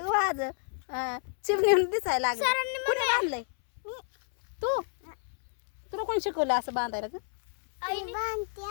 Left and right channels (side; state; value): right; silent; 58 dB below the other